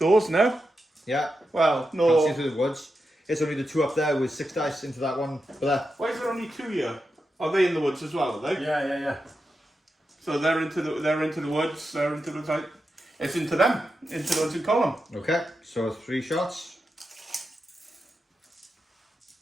now. Yeah. Well, Can't no. see into the woods. It's only the 2 up there with 6 dice into that one. But Why is there only 2 here? Are they in the woods as well? Are they? Yeah. So they're into the woods. They're into the side. It's into them. Into the ones in column. okay. So 3 shots.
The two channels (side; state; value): both; normal; correlation 0.88